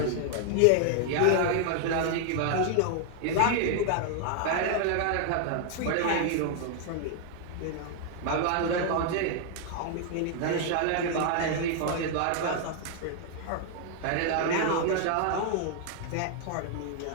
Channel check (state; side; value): different; both; correlation 0.00